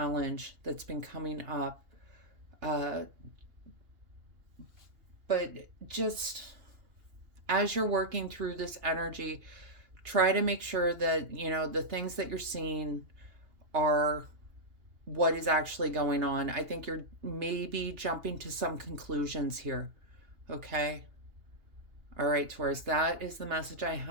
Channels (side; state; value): left; late; 2.8 ms